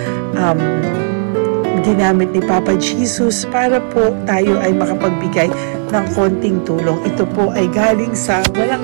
ginamit ni Papa Jesus para po tayo ay makapagbigay ng konting tulong. Ito po ay galing sa walang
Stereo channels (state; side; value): silent; left; digital silence